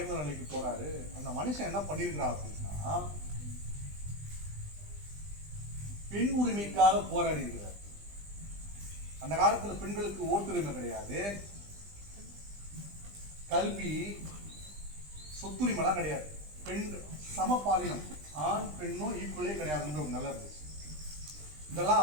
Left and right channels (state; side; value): late; left; 20 ms